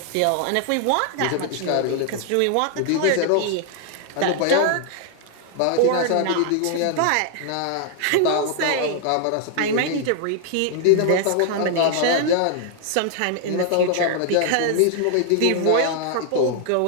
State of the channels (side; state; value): both; different; correlation 0.00